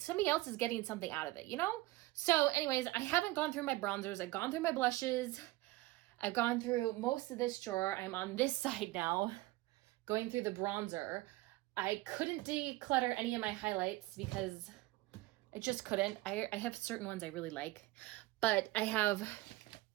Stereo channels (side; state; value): left; quieter; 19.3 dB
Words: out of it, you know? So anyways, I haven't gone through my bronzers. I've gone through my blushes. I've gone through most of this drawer. I'm on this side now, going through the bronzer. I couldn't declutter any of my highlights because I just couldn't. I have certain ones I really like, but I have,